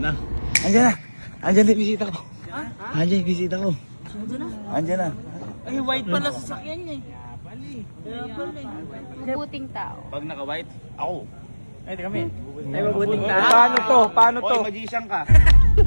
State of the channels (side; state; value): both; inverted; correlation -1.00